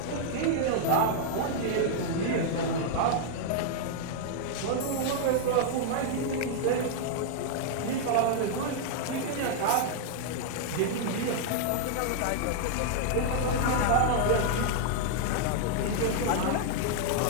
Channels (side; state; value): both; different; correlation -0.01